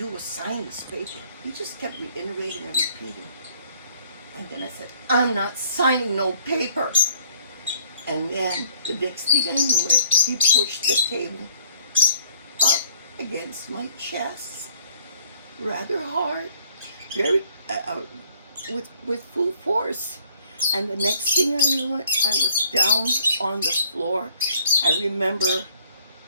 was sign this paper." He just kept reiterating and repeating. And then I said, "I'm not signing no paper." And then the next thing I knew it, he pushed the table up against my chest, rather hard, very with full force. And the next thing I knew it, I was down on the floor. I remember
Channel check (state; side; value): inverted; both; correlation -0.62